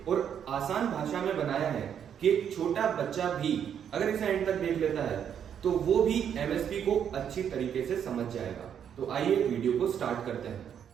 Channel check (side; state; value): left; quieter; 8.6 dB